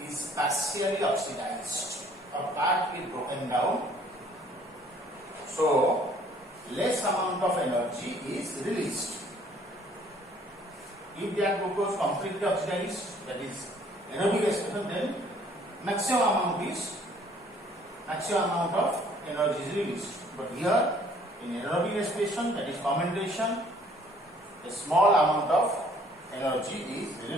is partially oxidized. A part is broken down, so less amount of energy is released. If that glucose completely oxidized, that is anaerobic respiration, then maximum amount of energy is released. But here in anaerobic respiration, that is fermentation, a small amount of energy is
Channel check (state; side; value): normal; both; correlation 0.59